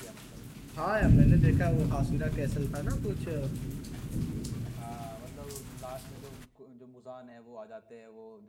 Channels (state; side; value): identical; both; correlation 1.00